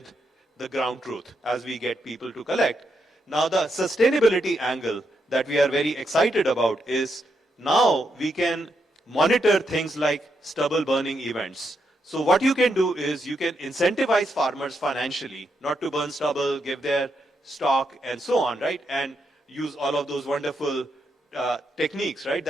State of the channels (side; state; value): both; normal; correlation 0.81